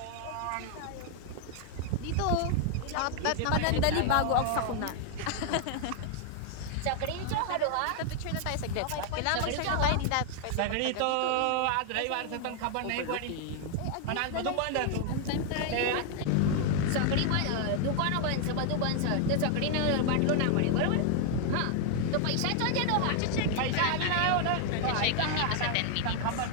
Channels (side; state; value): both; different; correlation 0.00